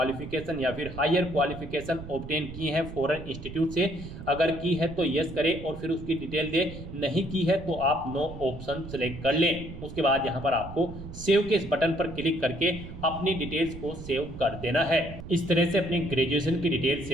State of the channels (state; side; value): noise; right; rumble, 12 dB below the sound